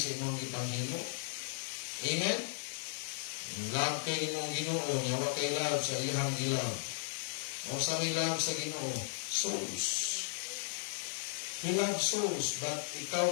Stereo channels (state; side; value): silent; right; digital silence